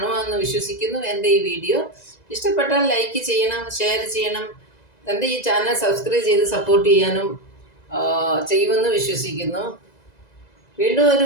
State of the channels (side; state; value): right; late; 1.9 ms